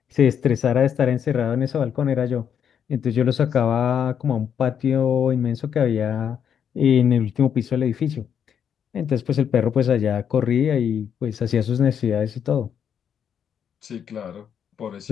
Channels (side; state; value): right; quieter; 8.2 dB